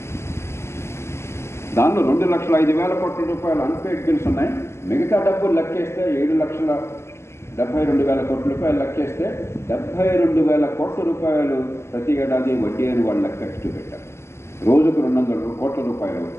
దానిలో 2,05,000 కోట్ల రూపాయలు అన్పెయిడ్ బిల్స్ ఉన్నాయి. మిగతా డబ్బులు లెక్కేస్తే 7,72,000 కోట్ల రూపాయలు లెక్కేస్తే 72,000 కోట్ల రూపాయలు ప్రతి ఏడాది వడ్డీ అని వాళ్ళు లెక్క పెట్టారు. రోజుకు 200 కోట్ల రూపాయలు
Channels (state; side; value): late; right; 0.13 ms